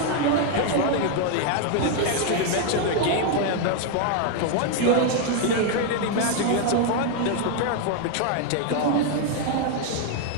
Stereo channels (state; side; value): different; both; correlation 0.01